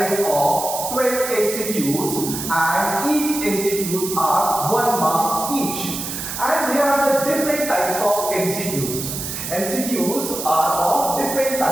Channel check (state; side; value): noise; right; hiss, 6 dB below the sound